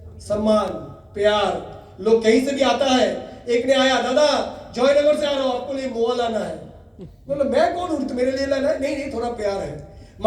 सम्मान, प्यार। लोग कहीं से भी आता है, एक ने आया, दादा जयनगर से आ रहा हूं, आपको लिए मोआ लाना है। बोलो मैं कौन हूं, मेरे लिए लाना है? नहीं थोड़ा प्यार है।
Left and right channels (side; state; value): both; identical; correlation 1.00